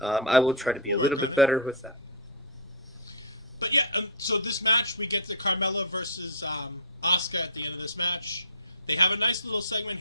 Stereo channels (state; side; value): normal; both; correlation -0.15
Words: I will try to be a little bit better with that. But yeah, so this match, we get the Carmella versus Asuka at the end of this match. They have a nice little segment